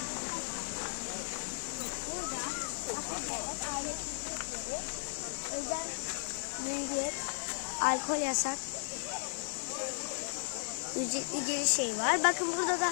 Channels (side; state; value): right; silent; digital silence